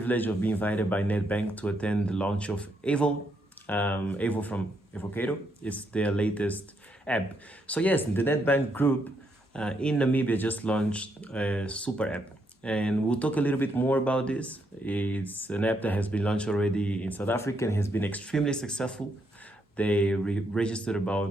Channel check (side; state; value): both; normal; correlation 0.77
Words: of being invited by Nedbank to attend the launch of Avo. Avo from Avocado. It's their latest app. So yes, the Nedbank group in Namibia just launched a super app, and we'll talk a little bit more about this. It's an app that has been launched already in South Africa and has been extremely successful. They registered